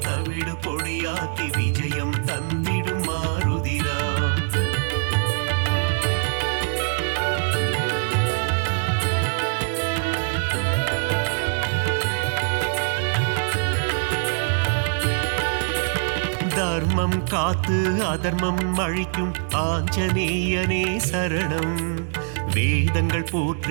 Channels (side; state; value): left; silent; digital silence